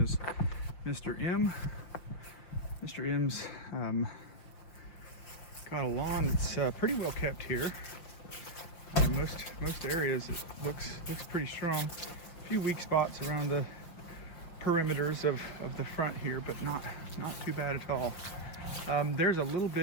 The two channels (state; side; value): late; right; 6.0 ms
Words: as Mr. M. Mr. M's got a lawn that's pretty well kept here. Most areas it looks pretty strong. A few weak spots around the perimeters of the front here, but not too bad at all. There's a little